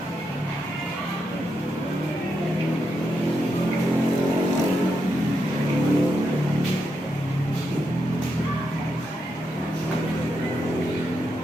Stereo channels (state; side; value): normal; both; correlation 0.83